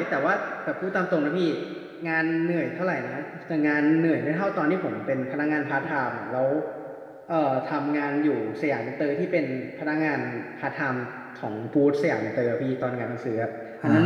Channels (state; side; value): identical; both; correlation 1.00